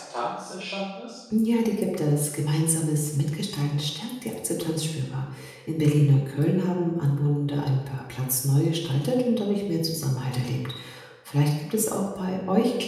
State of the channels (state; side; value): identical; both; correlation 1.00